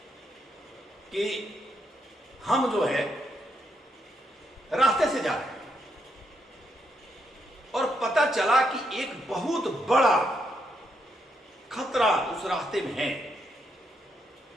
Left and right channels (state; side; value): normal; both; correlation 0.78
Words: कि हम जो है रास्ते से जा रहे हैं और पता चला कि एक बहुत बड़ा खतरा उस रास्ते में है,